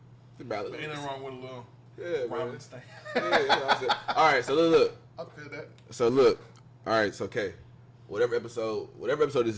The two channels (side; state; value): both; identical; correlation 1.00